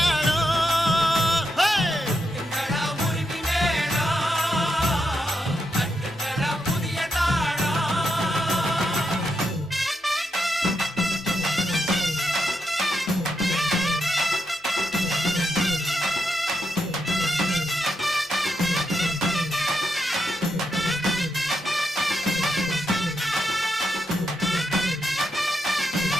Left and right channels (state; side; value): normal; both; correlation 0.83